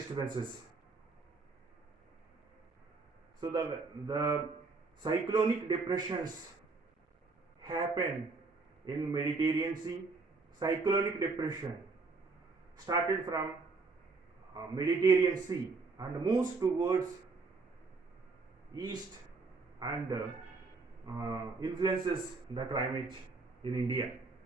So the cyclonic depressions happen in Mediterranean Sea. Cyclonic depression started from Mediterranean Sea and moves towards east and influences the climate in India.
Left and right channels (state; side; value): quieter; left; 4.0 dB